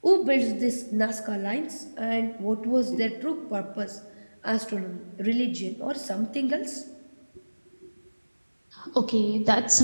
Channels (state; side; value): inverted; both; correlation -1.00